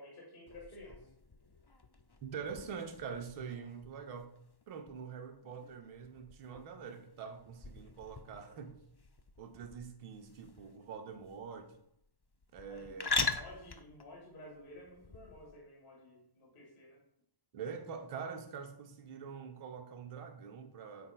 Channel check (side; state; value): right; late; 1.1 ms